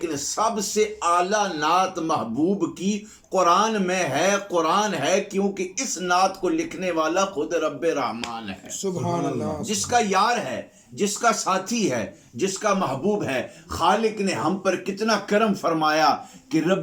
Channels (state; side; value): identical; both; correlation 1.00